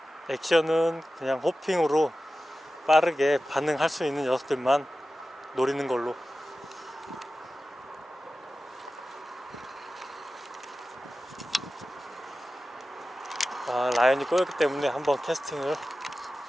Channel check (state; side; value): normal; both; correlation 0.94